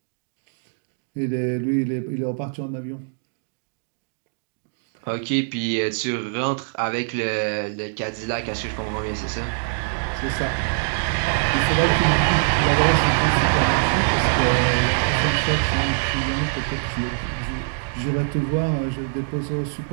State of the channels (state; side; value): silent; left; digital silence